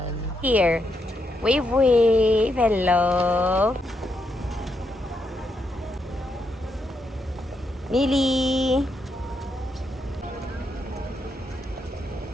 Here. Wave! Hello! Mili!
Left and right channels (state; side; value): normal; both; correlation 0.81